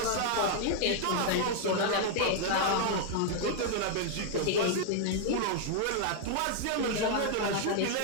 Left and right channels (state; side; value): different; both; correlation -0.01